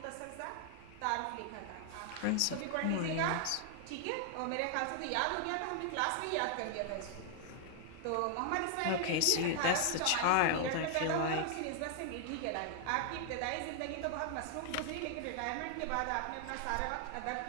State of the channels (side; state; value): both; different; correlation 0.00